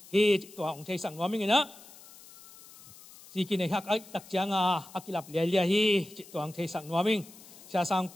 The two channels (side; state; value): left; noise; hiss, 20 dB below the sound